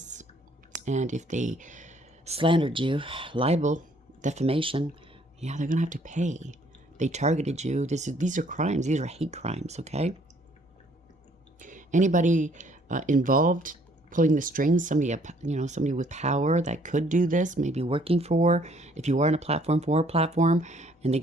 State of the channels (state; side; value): normal; both; correlation 0.62